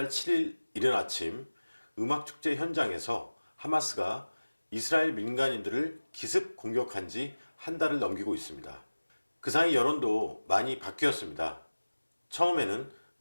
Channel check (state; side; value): inverted; both; correlation -1.00